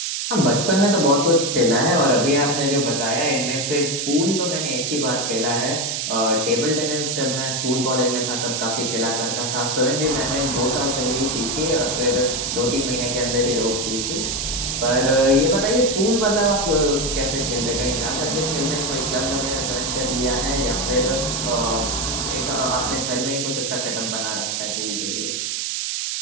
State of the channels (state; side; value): noise; right; hiss, 2 dB below the sound